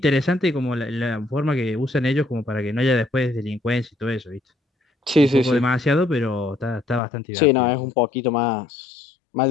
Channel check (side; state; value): right; drops out; at 7.0 s